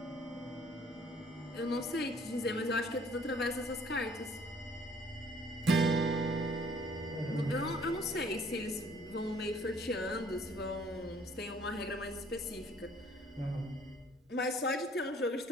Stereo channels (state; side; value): normal; both; correlation 0.58